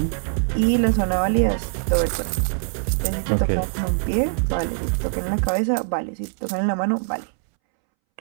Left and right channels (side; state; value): left; silent; 64 dB below the other